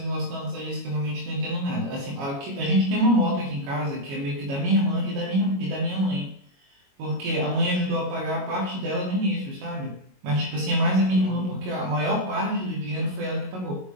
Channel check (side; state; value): left; late; 22 ms